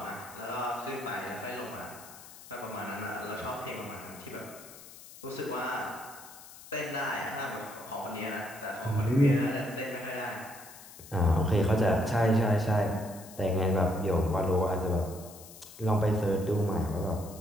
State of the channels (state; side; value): noise; left; hiss, 18 dB below the sound